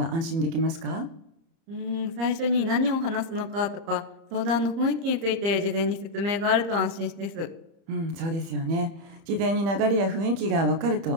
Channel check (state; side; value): late; left; 30 ms